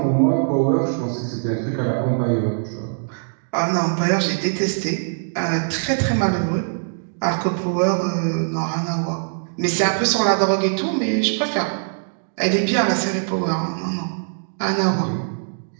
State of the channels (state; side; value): silent; left; digital silence